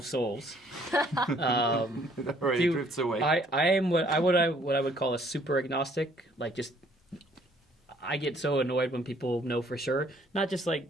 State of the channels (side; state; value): both; normal; correlation 0.62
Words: souls, it already do- drifts away. I am what I would call a super agnostic. Like just, I get so annoyed when people know for sure. Not just like